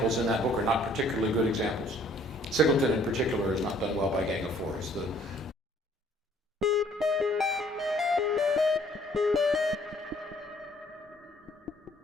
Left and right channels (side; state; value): both; normal; correlation 0.59